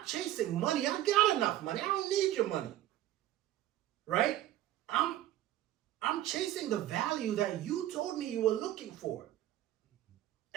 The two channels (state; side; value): quieter; left; 13.7 dB